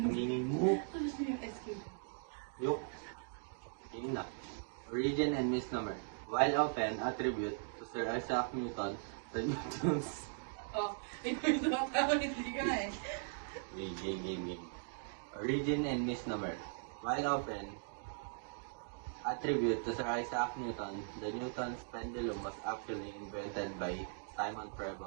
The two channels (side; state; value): left; silent; digital silence